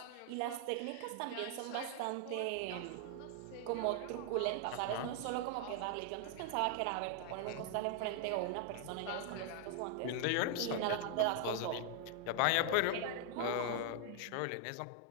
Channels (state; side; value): different; both; correlation 0.00